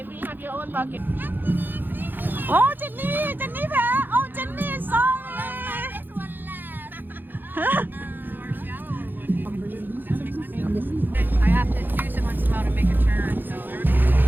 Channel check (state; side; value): late; left; 0.092 ms